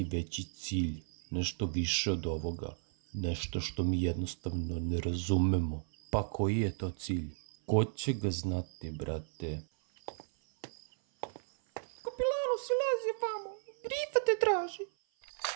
veći cilj, nešto više od ovoga, nešto što mi jednostavno ne razumemo. Pa koji je to cilj? Ko će ga znati, brate? Kapilanu, silazi vamo, Grifa te traži.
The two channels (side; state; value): left; silent; 55 dB below the other